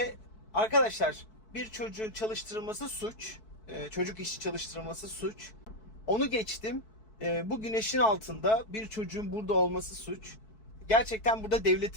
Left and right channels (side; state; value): right; late; 4.6 ms